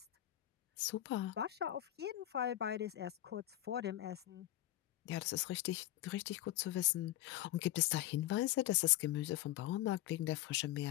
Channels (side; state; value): right; quieter; 14.4 dB